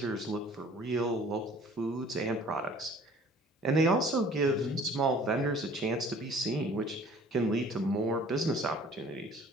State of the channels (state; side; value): normal; both; correlation 0.51